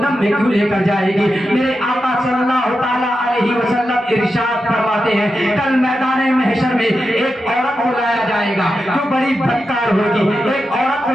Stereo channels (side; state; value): both; normal; correlation 0.89